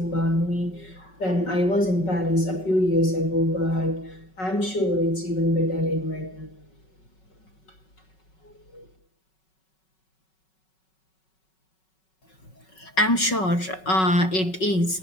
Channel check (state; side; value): late; right; 5.4 ms